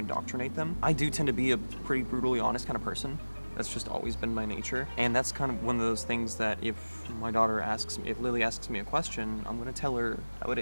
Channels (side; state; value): both; inverted; correlation -1.00